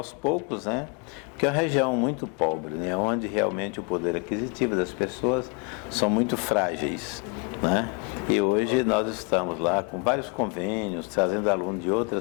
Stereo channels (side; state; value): right; quieter; 35.7 dB